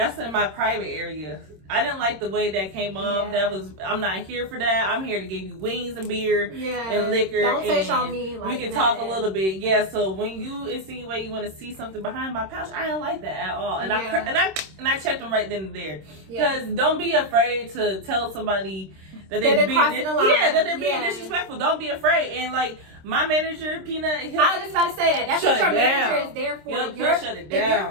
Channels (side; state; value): left; late; 26 ms